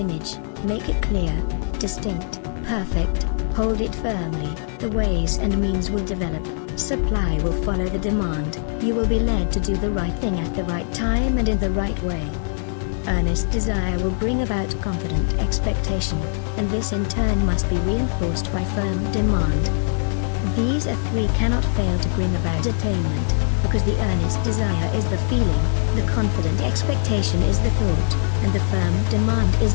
make it clear, distinct, perfect. Hold it firmly, the ways and means will develop, supply will follow the demand, you will be led to do the right thing at the right time and in the right way. Earnest desire will bring about confident expectation, and this in turn must be reinforced by firm demand. These three cannot fail to bring about attainment, because the earnest desire is the feeling, the confident expectation is the thought, and the firm demand is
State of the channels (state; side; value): silent; right; digital silence